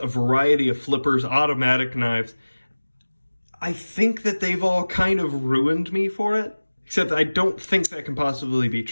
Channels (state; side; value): inverted; both; correlation -1.00